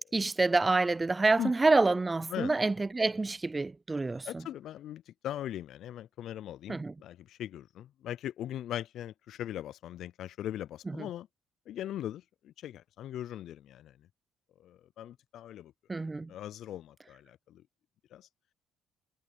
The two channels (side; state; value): both; normal; correlation 0.91